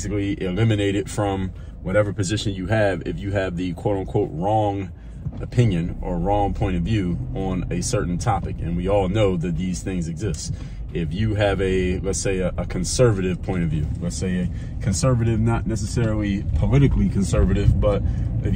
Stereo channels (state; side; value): identical; both; correlation 1.00